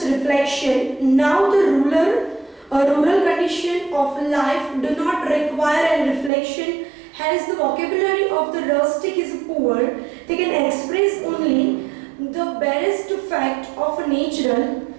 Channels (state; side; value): drops out; left; at 6.3 s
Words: reflection. Now, the rural condition of life do not require a reflection. Hence, the vocabulary of the rustic is poor. They can express only the barest fact of natural